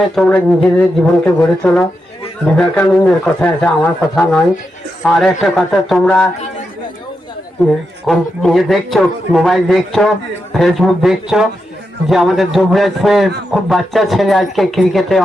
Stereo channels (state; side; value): normal; both; correlation 0.86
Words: তোমরা নিজেদের জীবনকে গড়ে তোলো। বিবেকানন্দের কথা আছে, আমার কথা নয়। আর একটা কথা, তোমরা দেখছো, মোবাইল দেখছো, ফেসবুক দেখছো যে আমাদের দুবরাজপুরের খুব বাচ্চা ছেলে আজকে ক্রিকেটে